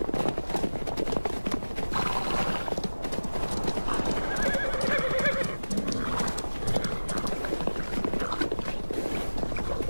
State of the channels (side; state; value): both; inverted; correlation -1.00